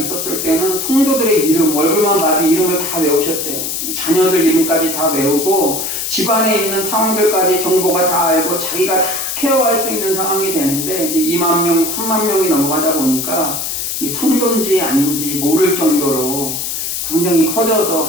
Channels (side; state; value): left; noise; hiss, 3 dB below the sound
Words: 때는 성도들의 이름, 얼굴만 봐도 이름을 다 외우셨대요. 자녀들 이름까지 다 외우고 집안에 있는 상황들까지 정보가 다 알고 자기가 다 케어할 수 있는 상황이 되는데 이제 2만 명, 3만 명이 넘어가다 보니까 이 성도인지 아닌지 모를 정도로 굉장히 커져서